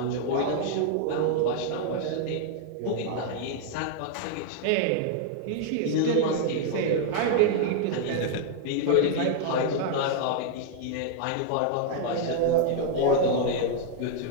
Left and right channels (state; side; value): different; both; correlation 0.00